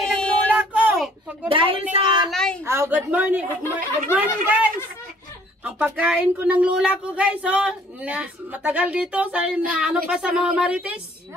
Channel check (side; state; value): both; normal; correlation 0.58